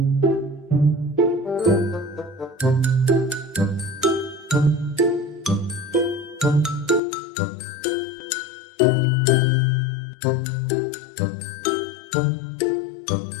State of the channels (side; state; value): right; drops out; at 7.0 s